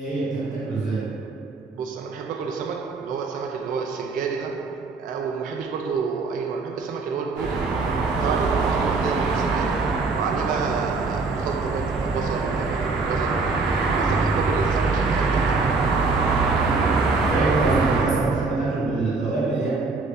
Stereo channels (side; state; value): left; quieter; 3.9 dB